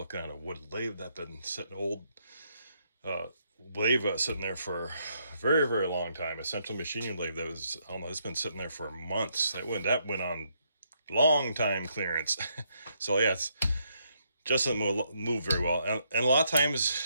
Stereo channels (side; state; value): both; inverted; correlation -0.75